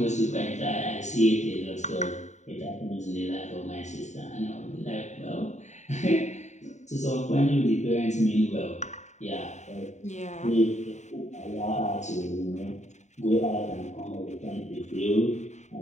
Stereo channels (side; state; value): right; late; 0.34 ms